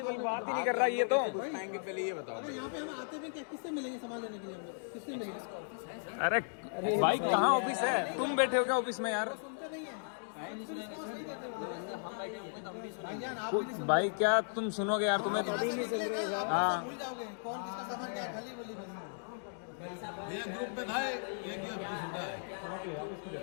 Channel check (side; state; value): right; silent; digital silence